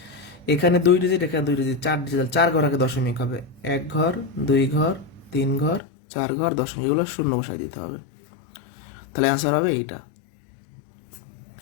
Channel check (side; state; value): right; drops out; at 5.8 s